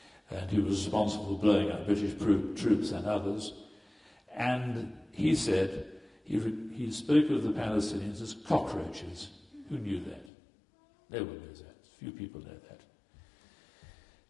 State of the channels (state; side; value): drops out; right; at 10.3 s